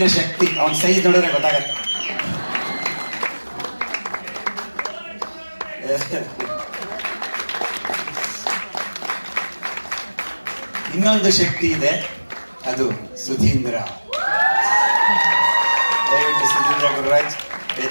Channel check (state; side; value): inverted; both; correlation -1.00